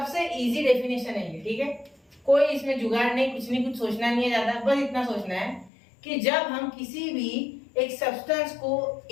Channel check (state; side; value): drops out; right; at 5.7 s